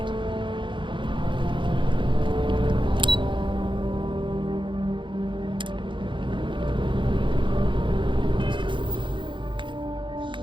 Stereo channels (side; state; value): left; late; 0.23 ms